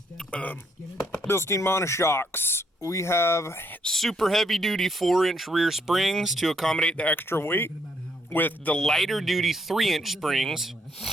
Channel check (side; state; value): both; normal; correlation 0.72